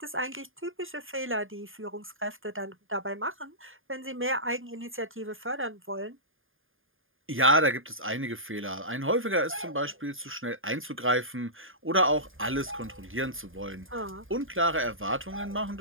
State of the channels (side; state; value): left; late; 0.59 ms